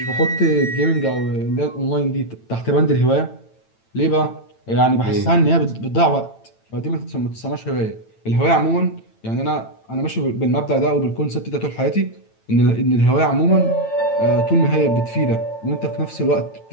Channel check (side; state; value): right; late; 9.0 ms